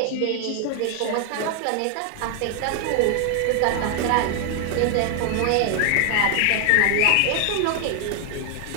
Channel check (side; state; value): both; different; correlation 0.00